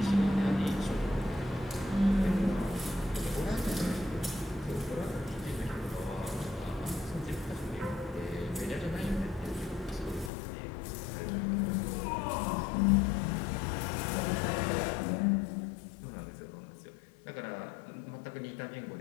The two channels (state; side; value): drops out; right; at 10.3 s